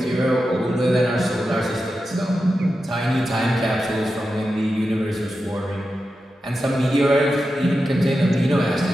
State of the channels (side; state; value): both; normal; correlation 0.90